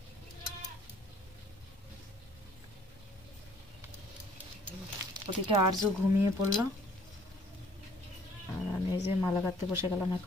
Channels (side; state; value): both; normal; correlation 0.58